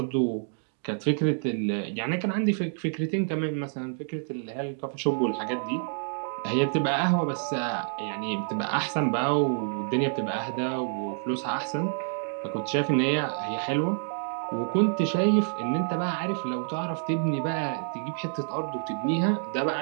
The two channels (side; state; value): left; silent; digital silence